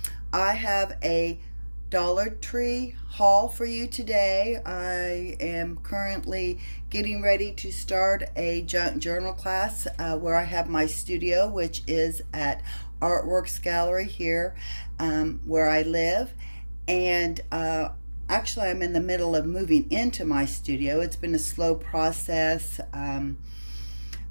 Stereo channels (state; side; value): inverted; both; correlation -1.00